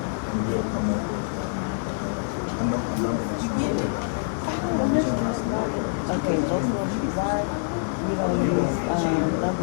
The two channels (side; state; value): right; silent; 61 dB below the other